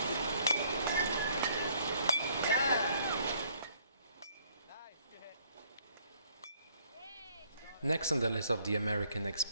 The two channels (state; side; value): inverted; both; correlation -0.64